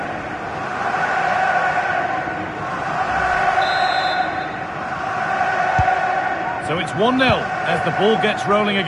So it's 1-0 as the ball gets rolling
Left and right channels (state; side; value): identical; both; correlation 1.00